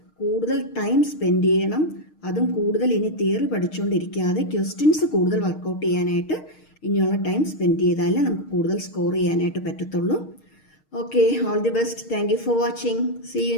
കൂടുതൽ ടൈം സ്പെൻഡ് ചെയ്യണം. അതും കൂടുതൽ ഇനി തിയറി പഠിച്ചുകൊണ്ടിരിക്കാതെ ക്വസ്റ്റ്യൻസ് കൂടുതൽ വർക്കൗട്ട് ചെയ്യാനായിട്ട് ഇനിയുള്ള ടൈം സ്പെൻഡ് ചെയ്താലേ നമുക്ക് കൂടുതൽ സ്കോർ ചെയ്യാനായിട്ട് പറ്റത്തുള്ളൂ. Okay, all the best. Thank you for watching. See you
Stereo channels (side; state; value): right; late; 6.5 ms